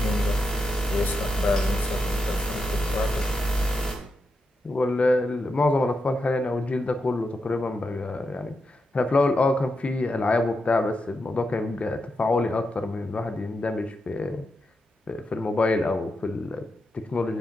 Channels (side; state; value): both; normal; correlation 0.86